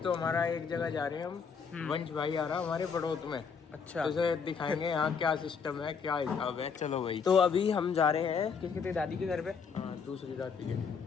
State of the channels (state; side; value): quieter; right; 6.0 dB